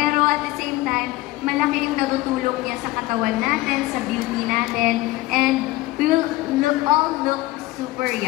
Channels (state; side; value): quieter; right; 18.6 dB